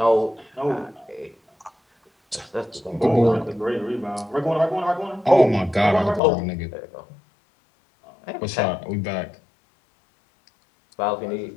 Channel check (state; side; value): drops out; right; at 6.2 s